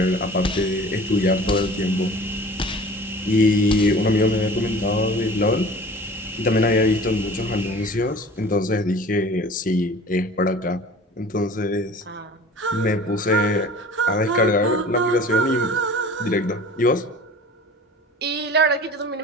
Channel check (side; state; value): both; normal; correlation 0.43